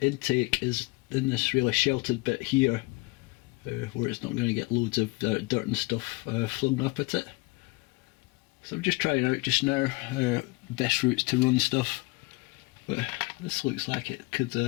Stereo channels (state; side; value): quieter; right; 25.0 dB